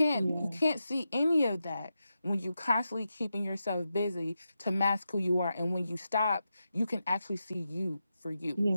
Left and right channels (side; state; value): both; inverted; correlation -0.89